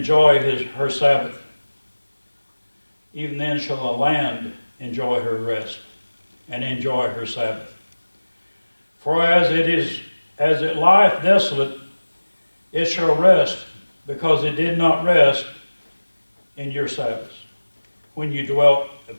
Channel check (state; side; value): inverted; both; correlation -1.00